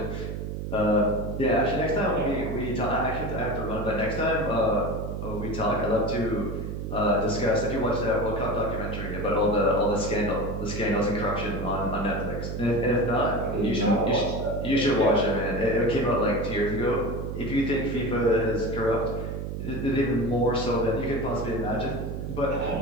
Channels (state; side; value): noise; right; hum, 5 dB below the sound